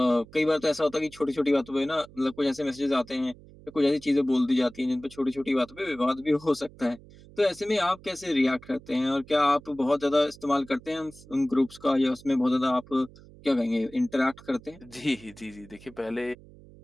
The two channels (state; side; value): noise; right; hum, 22 dB below the sound